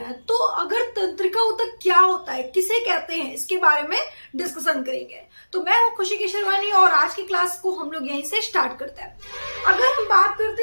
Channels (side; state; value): both; inverted; correlation -1.00